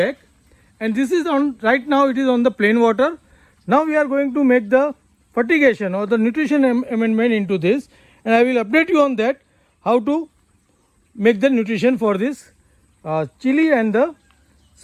and this is on right now it is on the plain water. Now we are going to make the fertigation or the nutrition amendment into this and I will update you on that how to make the nutrition for this chili and the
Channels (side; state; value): both; identical; correlation 1.00